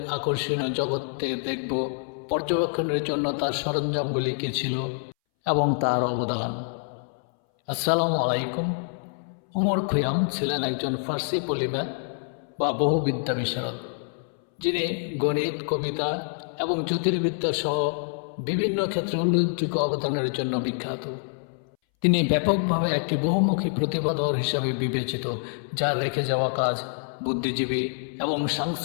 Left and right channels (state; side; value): silent; right; 61 dB below the other